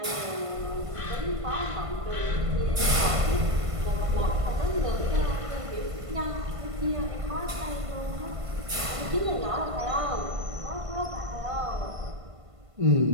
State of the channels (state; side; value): late; left; 1.5 ms